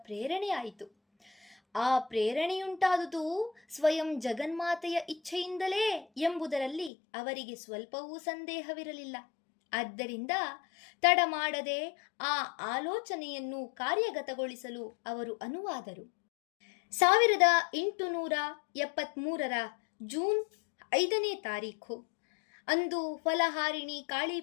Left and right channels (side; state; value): right; drops out; at 6.9 s